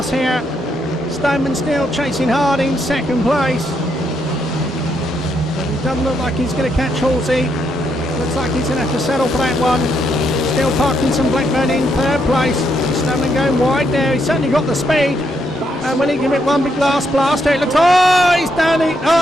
here. Stoneman still chasing hard in second place. But it doesn't look like he's going to catch Halsey. Looks like he's going to have to settle for that one. Still Parkinson-Blackburn in third place. Stoneman going wide there. He's certainly got the speed. And will he give it one big last blast? It looks, oh, he's down it.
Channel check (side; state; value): both; normal; correlation 0.77